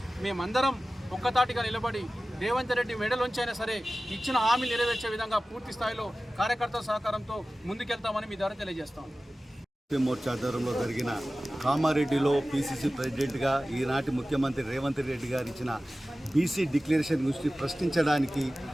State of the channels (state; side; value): normal; both; correlation 0.96